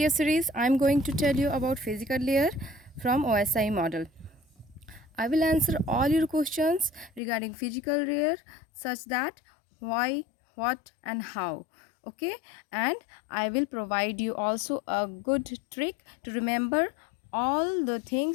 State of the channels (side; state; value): right; drops out; at 7.2 s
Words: series. I'm going to tell you about physical layer from OSI model. I will answer all your questions regarding physical layer such that why, what and how. Okay, and I will provide you also a good trick to remember all the